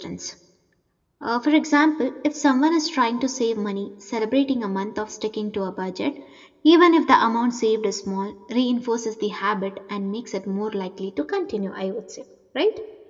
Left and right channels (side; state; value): both; identical; correlation 1.00